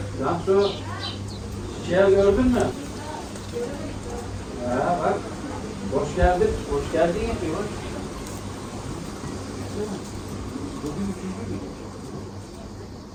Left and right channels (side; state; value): both; identical; correlation 1.00